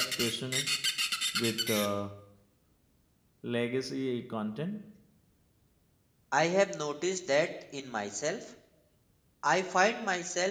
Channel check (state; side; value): identical; both; correlation 1.00